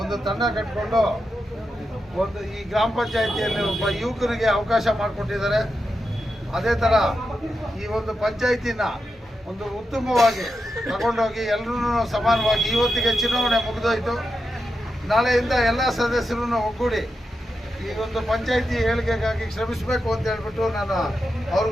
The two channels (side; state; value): both; normal; correlation 0.88